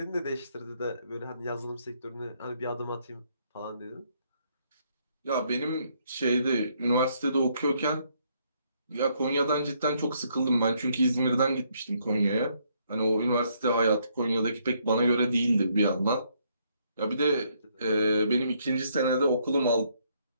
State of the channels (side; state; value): both; inverted; correlation -0.71